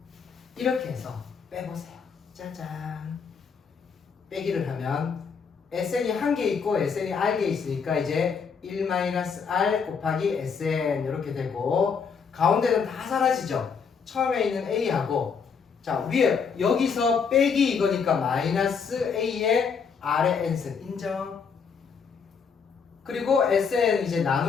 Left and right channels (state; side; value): quieter; right; 6.0 dB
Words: 이렇게 해서 빼보세요. 짜잔. 빼기를 하면 SN이 한 개 있고 SN이 R개 있으니까 이제 1-R 곱하기 SN 이렇게 되고 가운데는 다 사라지죠. 처음에 있는 A하고 자 위에 여기서 빼기 이거니까 마이너스 A에 R의 n승 인정. 그리고 SN 이제